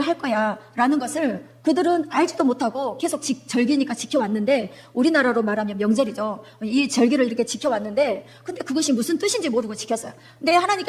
거야 라는 것을 그들은 알지도 못하고 계속 절기니까 지켜왔는데 우리나라로 말하면 명절이죠. 이 절기를 이렇게 지켜왔는데 근데 그것이 무슨 뜻인지 모르고 지켰어요. 근데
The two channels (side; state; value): both; identical; correlation 1.00